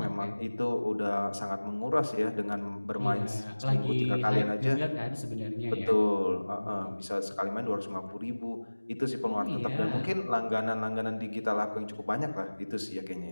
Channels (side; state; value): both; inverted; correlation -1.00